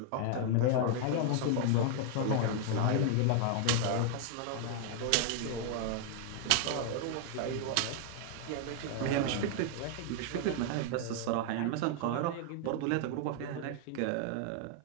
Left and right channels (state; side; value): different; both; correlation 0.00